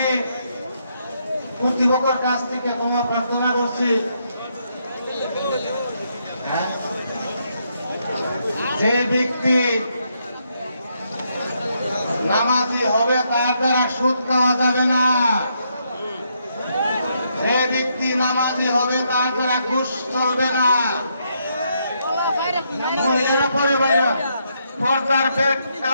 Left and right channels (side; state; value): both; inverted; correlation -0.76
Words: কর্তৃপক্ষের কাছ থেকে ক্ষমা প্রার্থনা করছি, যে ব্যক্তি নামাজি হবে তার দ্বারা সুদ খাওয়া যাবে না, যে ব্যক্তি নামাজি হবে তার দ্বারা ঘুষ চলবে না। মহিলারা পরে বাইরে পর্দার বেড